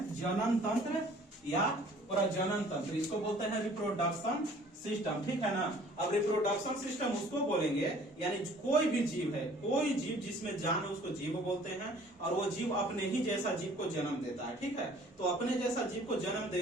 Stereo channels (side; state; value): both; normal; correlation 0.53